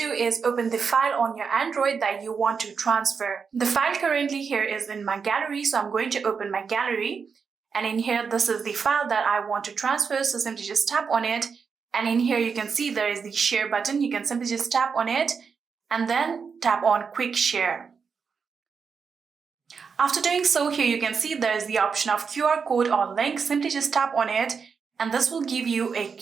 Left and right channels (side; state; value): left; quieter; 5.8 dB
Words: is open the file on your Android that you want to transfer. The file currently here is in my gallery, so I'm going to open my gallery. And in here, this is the file that I want to transfer, so simply just tap on it. And in here, you can see there is the share button. You can simply just tap on it and then tap on Quick Share. After doing so, here you can see there is the option of QR code or link. Simply just tap on it and this will give you a